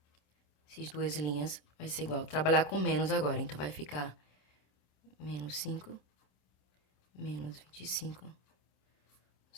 Essas duas linhas vai ser igual. Trabalhar com menos agora, então vai ficar menos 5, menos 25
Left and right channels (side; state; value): right; late; 27 ms